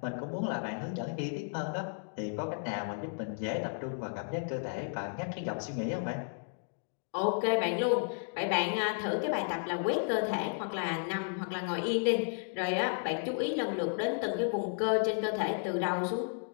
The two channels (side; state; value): right; silent; digital silence